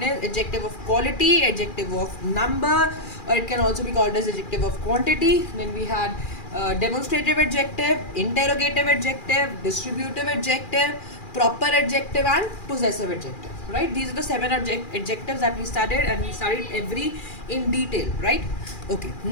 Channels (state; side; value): late; right; 2.4 ms